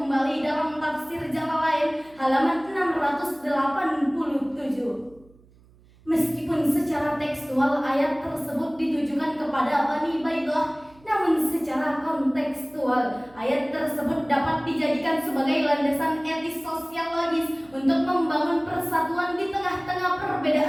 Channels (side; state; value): right; noise; hum, 28 dB below the sound